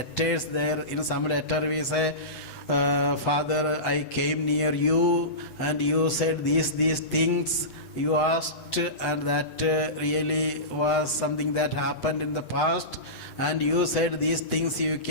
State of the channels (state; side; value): late; right; 8.0 ms